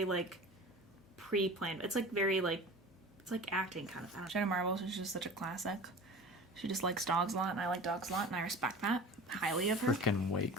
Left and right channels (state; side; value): noise; left; hum, 28 dB below the sound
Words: like pre-planned. It's like very like it's like acting kind of. Jenna Marbles is just such a classic. She just likes dogs a lot, and I like dogs a lot, and I respect that highly of her. Freaking wait,